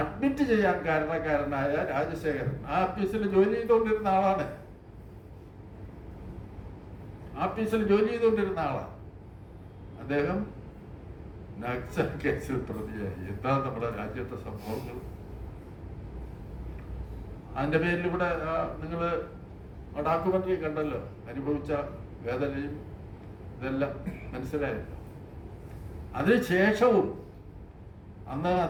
ചെയ്യാൻ കാരണക്കാരനായ രാജശേഖരൻ ആ ഓഫീസിൽ ജോലി ചെയ്തുകൊണ്ടിരുന്ന ആളാണ്. ഓഫീസിൽ ജോലി ചെയ്തുകൊണ്ടിരുന്ന ആളാണ് അദ്ദേഹം. നക്സൽ കേസിൽ പ്രതിയായി. എന്താ നമ്മുടെ രാജ്യത്തെ സംഭവങ്ങൾ? അതിന്റെ പേരിൽ ഇവിടെ നിങ്ങൾ ഡോക്യുമെന്ററി കണ്ടല്ലോ, അനുഭവിച്ച വേദനയും ഇതെല്ലാം മനസ്സിലായല്ലോ. അതിനുശേഷവും അന്ന്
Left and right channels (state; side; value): identical; both; correlation 1.00